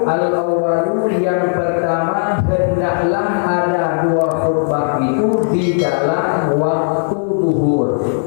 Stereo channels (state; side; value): silent; right; digital silence